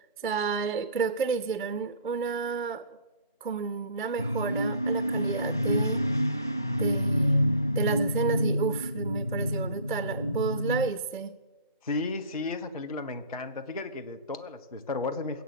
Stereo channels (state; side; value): inverted; both; correlation -0.46